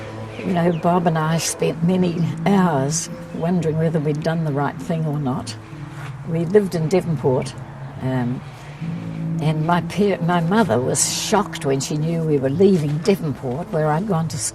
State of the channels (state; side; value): identical; both; correlation 1.00